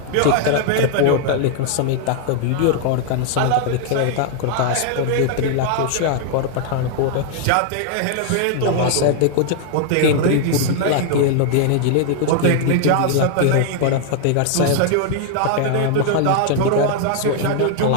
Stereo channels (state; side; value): different; both; correlation 0.00